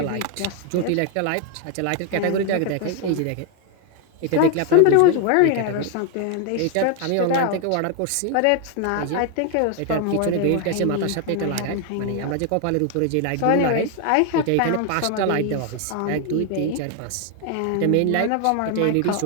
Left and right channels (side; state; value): both; different; correlation 0.01